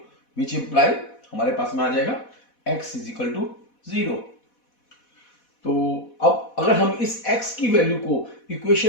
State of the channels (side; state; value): right; late; 4.1 ms